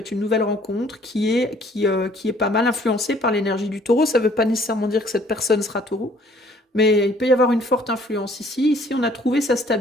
une nouvelle rencontre qui est pas mal influencée par l'énergie du taureau. Ça ne veut pas nécessairement dire que cette personne sera taureau, mais il peut y avoir une forte influence ici. Ici, on a trouvé sa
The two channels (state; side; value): normal; both; correlation 0.59